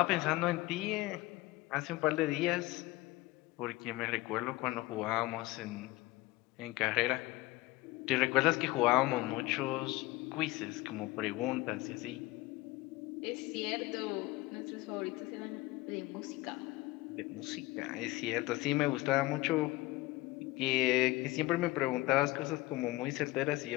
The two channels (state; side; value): quieter; right; 19.7 dB